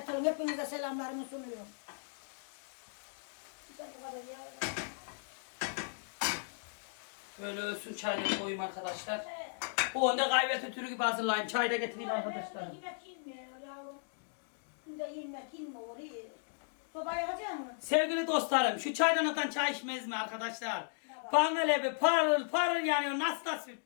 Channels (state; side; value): silent; right; digital silence